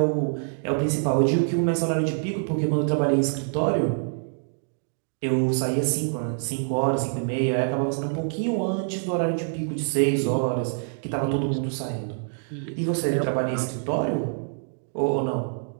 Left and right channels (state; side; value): silent; left; digital silence